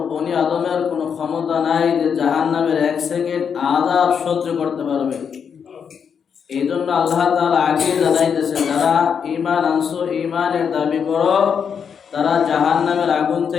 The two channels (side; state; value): right; quieter; 7.0 dB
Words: বনি আদমের কোনো ক্ষমতা নাই যে জাহান্নামের 1 সেকেন্ড আযাব সহ্য করতে পারবে। এই জন্য আল্লাহ তাআলা আগে জানাইতেছে, যারা ঈমান আনছো, ঈমানের দাবি করো, তারা জাহান্নামের আগুন